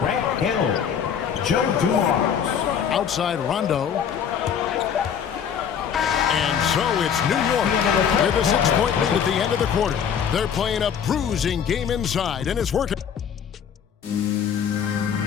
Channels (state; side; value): quieter; right; 7.9 dB